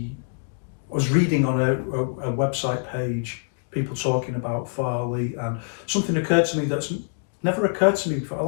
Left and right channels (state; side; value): silent; right; 62 dB below the other